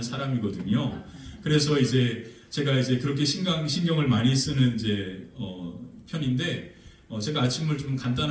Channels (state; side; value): identical; both; correlation 1.00